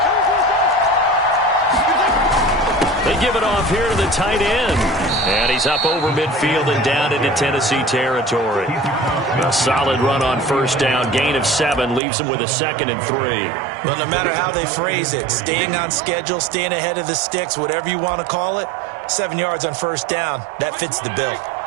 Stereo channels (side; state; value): left; drops out; at 12.0 s